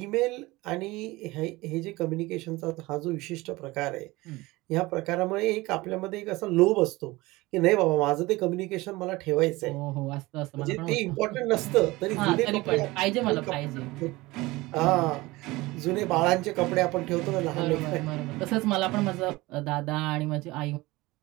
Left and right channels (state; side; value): quieter; left; 20.8 dB